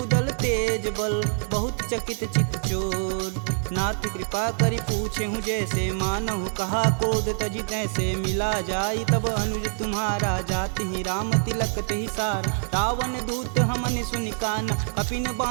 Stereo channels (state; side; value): silent; left; digital silence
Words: तेज बल, बहुत चकित चित चोर, नाथ कृपा करि पूछे हूँ जैसे, मानहु कहा क्रोध तजि तैसे, मिला जाई तब अनुज तुम्हारा, जाति ही राम तिलक तेहि सार, रावण दूत हमन सुनि काना, कपिन